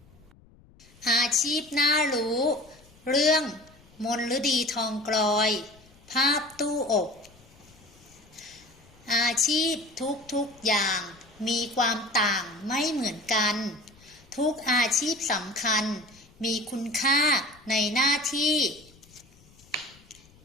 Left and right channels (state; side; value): noise; left; rumble, 27 dB below the sound